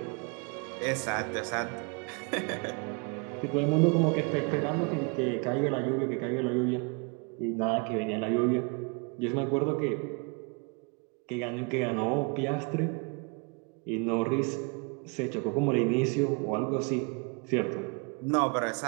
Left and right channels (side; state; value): left; quieter; 33.1 dB